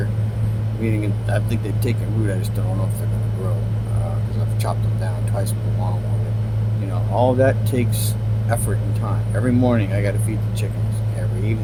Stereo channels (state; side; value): identical; both; correlation 1.00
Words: Meaning, I think they've taken root. I just don't know if they're going to grow because I've chopped them down twice with a lawnmower. All that takes effort and time. Every morning I got to feed the chickens. Every